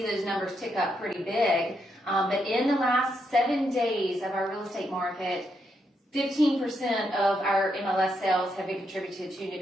those numbers tick up pretty big, but in the last 7 days of our real estate market, 15% of our MLS sales have been contributed to new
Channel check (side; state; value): both; normal; correlation 0.80